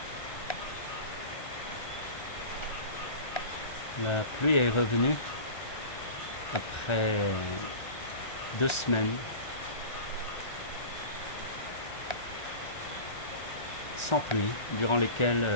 La pluie est revenue après 2 semaines sans pluie, durant lesquelles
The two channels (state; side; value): late; right; 1.3 ms